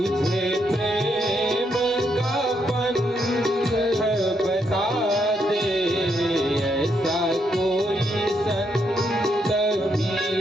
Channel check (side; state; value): both; normal; correlation 0.77